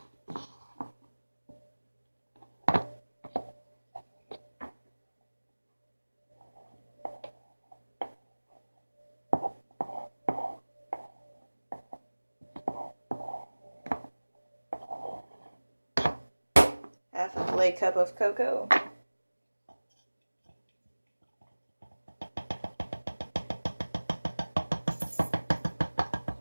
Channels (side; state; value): both; inverted; correlation -1.00